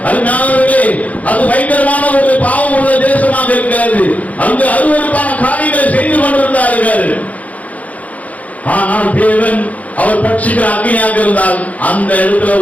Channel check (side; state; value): right; late; 0.071 ms